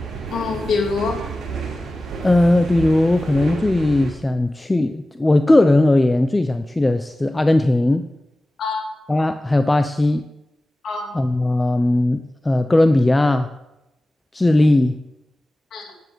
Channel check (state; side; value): normal; both; correlation 0.96